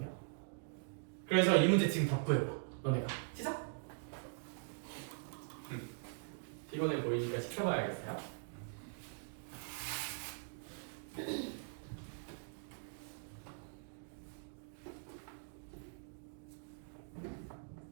그래서 이 문제 지금 답부해봐. 너네가 시작. 피곤해 보이니까 시켜봐야겠어요.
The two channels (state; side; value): silent; left; digital silence